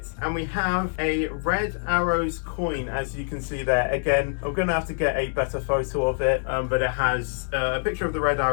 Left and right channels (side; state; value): right; silent; digital silence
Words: and we have a Red Arrows coin, as you can see there. Again, I'm gonna have to get a better photo of it, but it has a picture of the Red